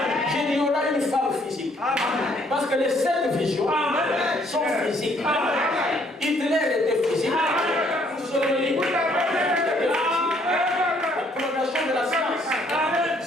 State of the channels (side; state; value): both; normal; correlation 0.65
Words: J'ai dit il y aura une femme physique. Parce que les 7 visions sont physiques. Hitler était physique. Mussolini était physique. La progression de la science,